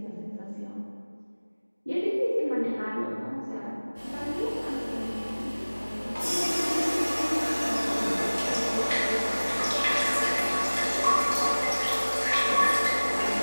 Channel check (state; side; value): inverted; both; correlation -1.00